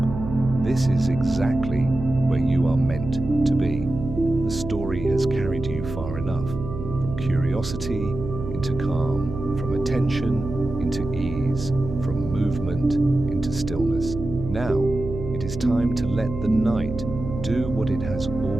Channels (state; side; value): noise; right; hum, 8 dB below the sound